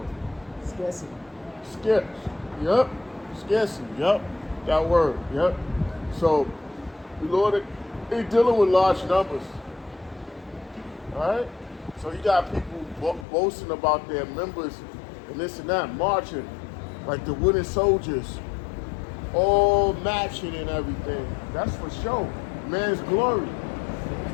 Scarcity. Scarce. Yep. Scarcity. Yep. That word. Yep. So the Lord is dealing with large numbers. All right? So you got people boasting about their members and this and that, marching like the wooden soldiers, all matching and everything. That's for show. Man's glory. You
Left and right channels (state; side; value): drops out; right; at 13.2 s